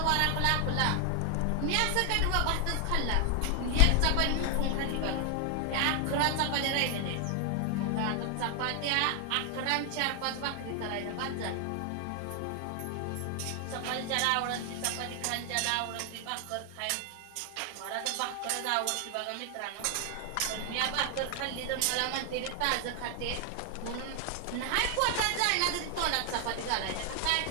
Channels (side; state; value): both; different; correlation 0.00